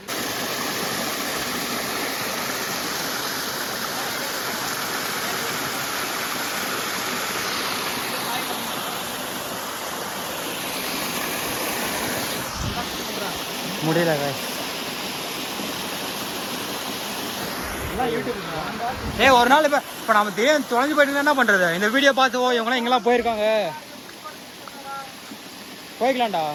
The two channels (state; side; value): identical; both; correlation 1.00